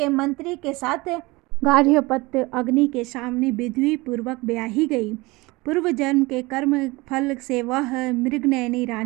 मंत्री के साथ गार्हपत्य अग्नि के सामने विधि पूर्वक ब्याही गई। पूर्व जन्म के कर्म फल से वह मृगनयनी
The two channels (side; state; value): left; quieter; 23.0 dB